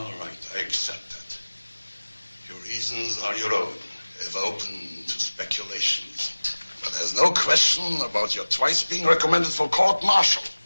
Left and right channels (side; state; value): both; inverted; correlation -1.00